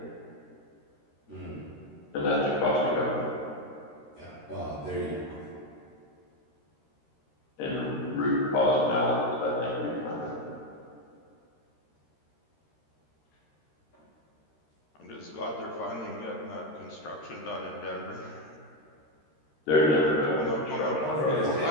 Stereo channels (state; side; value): late; right; 13 ms